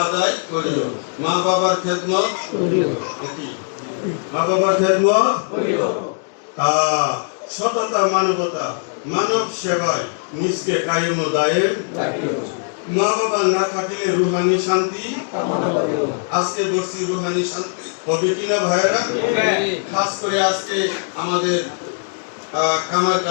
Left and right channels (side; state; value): right; silent; digital silence